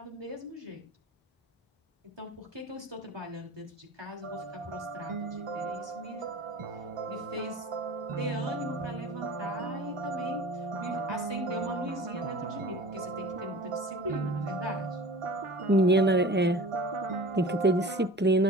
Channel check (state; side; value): normal; both; correlation 0.39